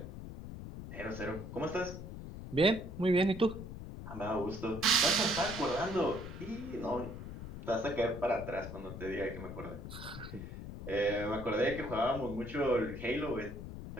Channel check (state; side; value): noise; left; rumble, 9 dB below the sound